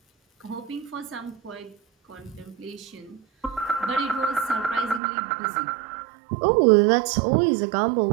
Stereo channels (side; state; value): left; drops out; at 5.0 s